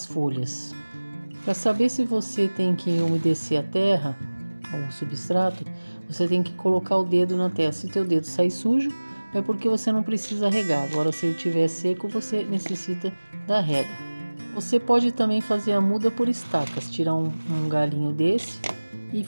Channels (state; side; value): inverted; both; correlation -1.00